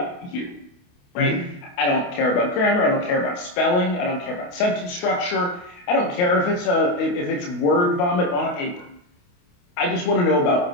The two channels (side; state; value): right; late; 28 ms